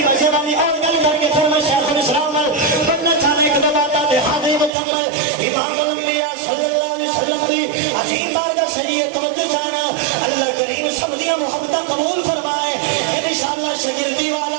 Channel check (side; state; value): left; drops out; at 4.7 s